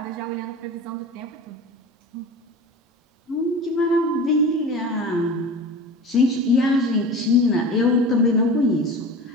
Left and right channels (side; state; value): both; normal; correlation 0.33